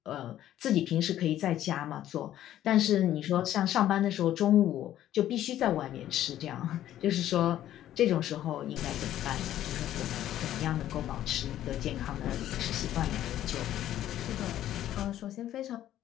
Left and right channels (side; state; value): right; quieter; 12.4 dB